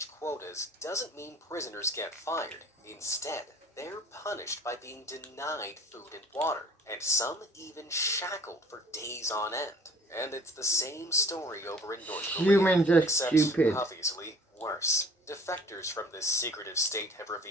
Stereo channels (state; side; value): normal; both; correlation 0.52